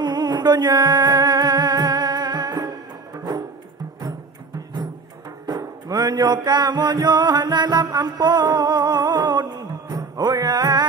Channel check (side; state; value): left; quieter; 4.2 dB